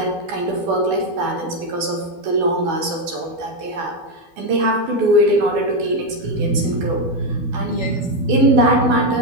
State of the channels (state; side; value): late; left; 12 ms